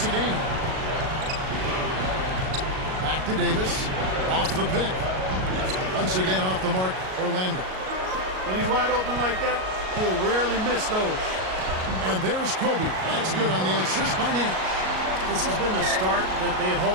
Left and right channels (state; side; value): late; left; 38 ms